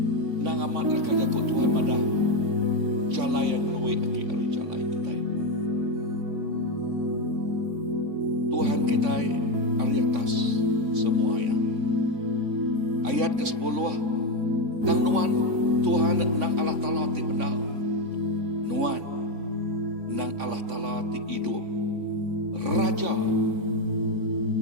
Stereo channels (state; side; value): late; left; 3.5 ms